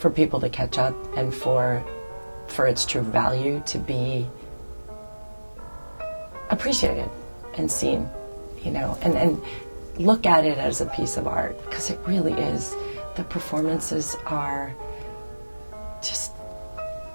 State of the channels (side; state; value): both; inverted; correlation -1.00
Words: people to catch up and for its true value to be appreciated and seen, you know, and look at it as a piece of art, because it really is. The performances are just